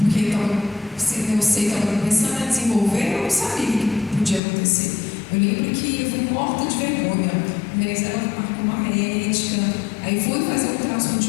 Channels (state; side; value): drops out; right; at 4.4 s